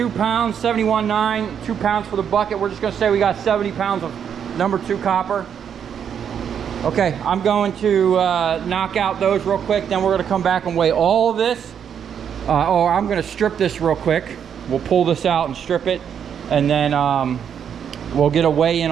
pounds, 71.9, 2 pounds for the bucket. We're just gonna say we got 70 pounds of number 2 copper. Okay, I'm going to knock out those real quick, then we're gonna come back and weigh all of this. Or I'm gonna strip this real quick. We'll pull this out and strip it, and then we'll get a weigh in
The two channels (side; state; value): left; quieter; 8.1 dB